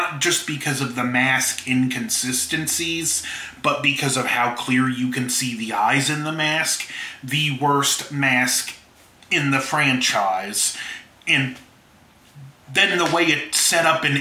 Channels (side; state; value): both; identical; correlation 1.00